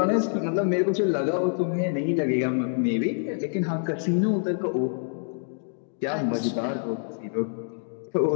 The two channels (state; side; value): silent; right; digital silence